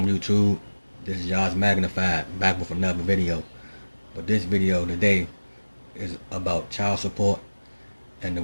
YouTube, this is Yaz Magnified back with another video. But this video today is about child support and the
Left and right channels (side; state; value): both; inverted; correlation -1.00